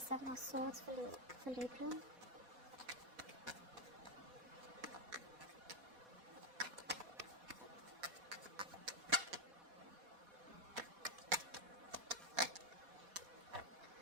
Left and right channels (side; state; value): left; late; 4.1 ms